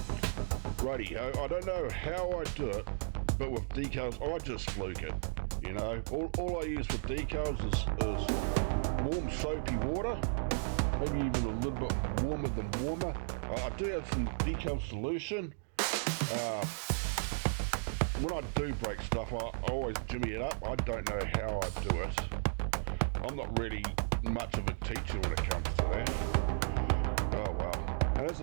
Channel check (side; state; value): left; silent; digital silence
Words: Righty, I don't know how I do it, but with decals, I just fluke it. You know, all I use for decals is warm soapy water, maybe even a little bit warmer than warmer. I do have some decal solution. When I do break stuff, I always jimmy it up. I don't know how I do it. I'm not really much of a teacher when it comes to that. Oh well. And as